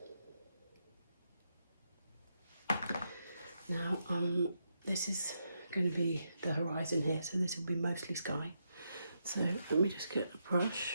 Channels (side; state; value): both; inverted; correlation -0.82